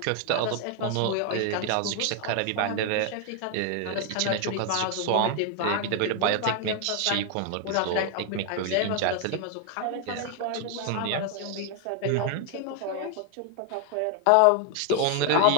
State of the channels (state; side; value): different; both; correlation 0.00